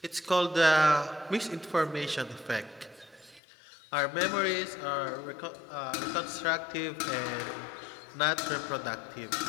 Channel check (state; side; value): drops out; right; at 3.4 s